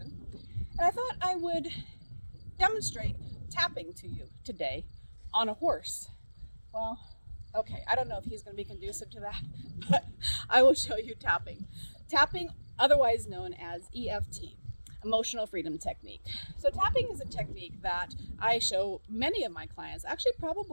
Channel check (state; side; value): inverted; both; correlation -1.00